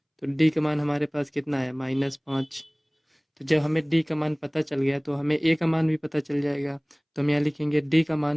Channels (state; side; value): identical; both; correlation 1.00